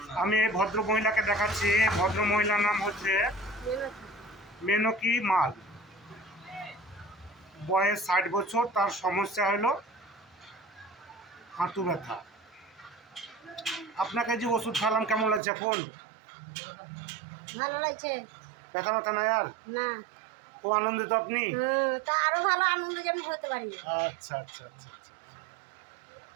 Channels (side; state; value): left; drops out; at 15.4 s